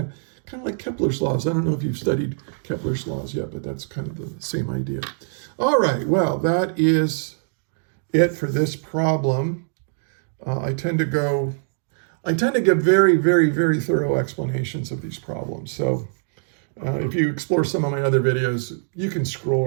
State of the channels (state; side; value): silent; left; digital silence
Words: of like Kepler's laws. I don't know if you've studied Kepler's laws yet, but that's kind of the same idea. All right, well, that is it for this problem. I tend to give very, very, very thorough explanations of these problems. So if you explore some of my other videos, you can scroll